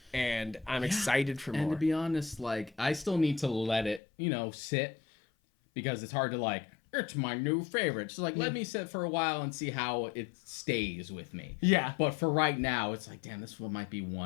and I'm excited for more. And to be honest, like, I still need to let it, you know, sit, because it's hard to like, it's my new favorite. So like, let me sit for a while and see how it stays with me. Yeah. But for right now, it's like, damn, this one might be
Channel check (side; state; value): right; drops out; at 4.0 s